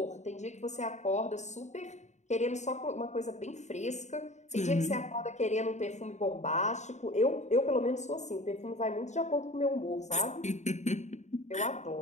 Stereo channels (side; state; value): right; late; 0.34 ms